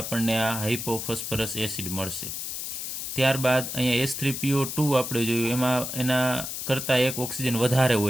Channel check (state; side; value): noise; left; hiss, 5 dB below the sound